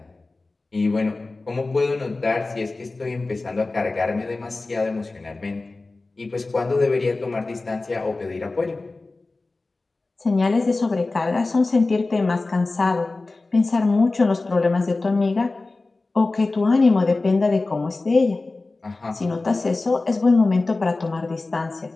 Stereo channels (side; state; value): right; quieter; 3.4 dB